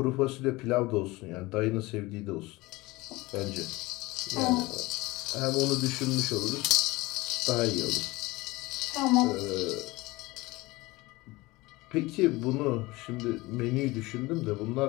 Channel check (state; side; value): quieter; right; 21.2 dB